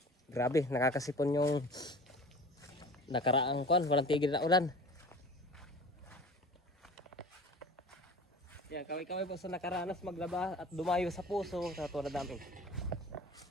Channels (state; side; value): normal; both; correlation 0.40